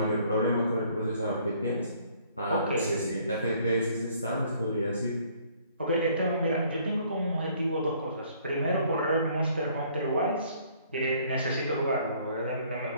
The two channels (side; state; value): both; inverted; correlation -0.61